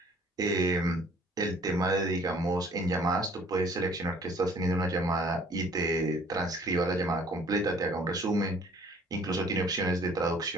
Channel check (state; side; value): normal; both; correlation 0.56